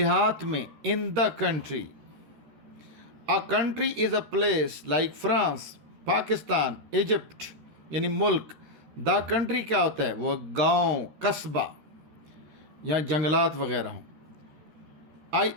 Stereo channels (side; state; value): left; late; 13 ms